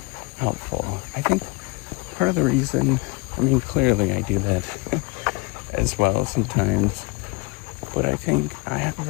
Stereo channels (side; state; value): right; quieter; 26.6 dB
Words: helpful. I think part of the reason, clearly I do that as well sometimes, but I think I have